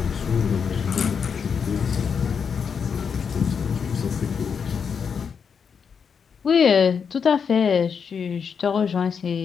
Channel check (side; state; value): right; quieter; 6.5 dB